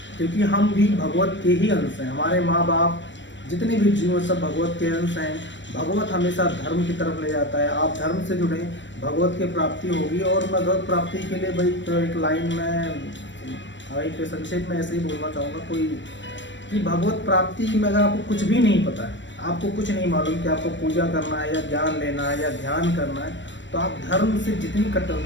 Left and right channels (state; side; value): late; right; 0.53 ms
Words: क्योंकि हम भी भगवत के ही अंश हैं। हमारे माँ बाप, जितने भी जीव सब भगवत के अंश हैं। भगवत हमेशा धर्म की तरफ ले जाता है। आप धर्म से जुड़े, भगवत की प्राप्ति होगी। और मैं भगवत प्राप्ति के लिए भाई तो एक लाइन में भाई पे संक्षेप में ऐसे ही बोलना चाहूँगा कोई कि भगवत प्राप्ति में अगर आपको कुछ भी नहीं पता है, आपको कुछ नहीं मालूम कि आपको पूजा करना है या ज्ञान लेना है या ध्यान करना है, तो आप धर्म से जितनी